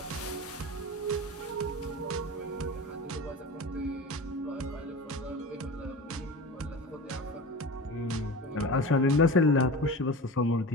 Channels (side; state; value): both; normal; correlation 0.31